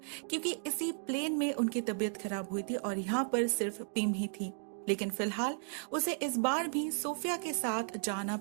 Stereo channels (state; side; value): silent; left; digital silence